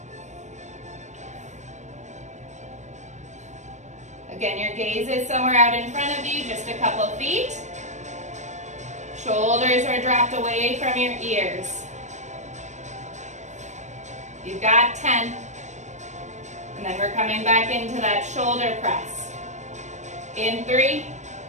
Again, your gaze is somewhere out in front of you, just a couple feet. Shoulders are dropped away from your ears. You've got 10. And then we're coming back into that shoulder press. In 3,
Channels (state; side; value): late; left; 0.34 ms